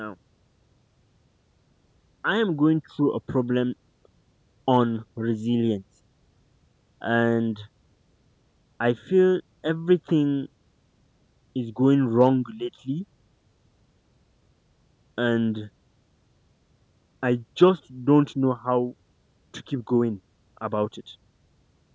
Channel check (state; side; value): identical; both; correlation 1.00